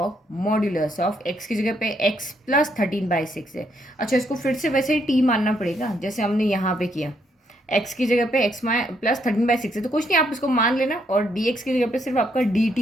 मॉड्यूलस ऑफ x की जगह पे x प्लस 13/6 है। अच्छा, इसको फिर से वैसे ही t मानना पड़ेगा जैसे हमने यहाँ पे किया, x की जगह पे x प्लस 13/6 है, तो कुछ नहीं, आप इसको मान लेना, और dx की जगह पे सिर्फ आपका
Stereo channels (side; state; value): both; normal; correlation 0.74